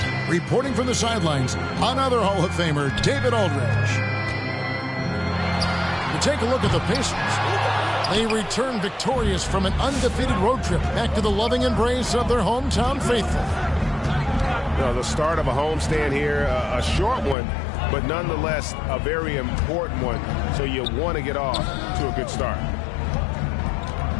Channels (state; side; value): drops out; right; at 17.4 s